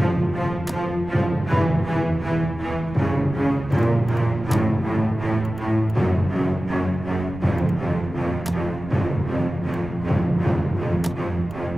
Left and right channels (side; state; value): right; noise; rumble, 15 dB below the sound